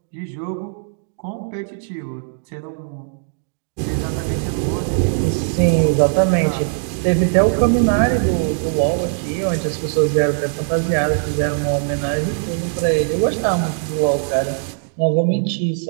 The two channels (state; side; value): silent; left; digital silence